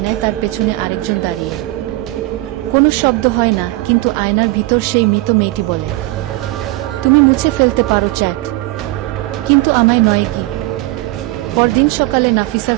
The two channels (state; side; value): quieter; left; 19.2 dB